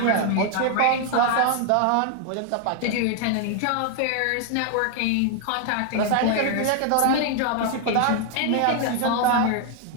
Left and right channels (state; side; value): different; both; correlation 0.00